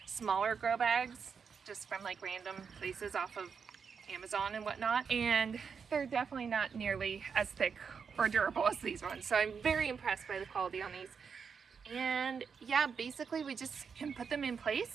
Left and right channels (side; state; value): left; quieter; 6.1 dB